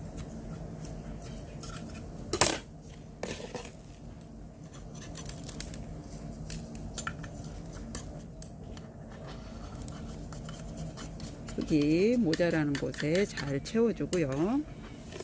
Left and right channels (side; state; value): both; identical; correlation 1.00